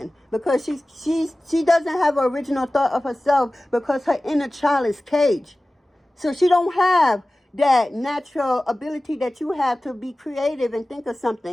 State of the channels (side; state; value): both; normal; correlation 0.97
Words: Because she doesn't have an original thought of herself, because her inner child is caged. So she don't have that natural ability that you have to be creative and think of